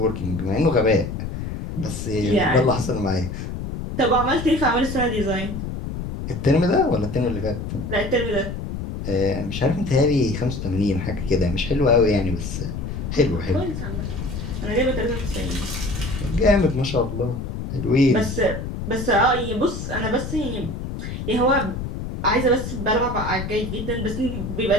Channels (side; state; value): left; noise; rumble, 6 dB below the sound